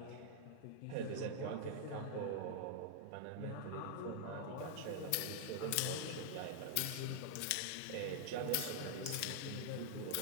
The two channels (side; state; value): both; different; correlation -0.01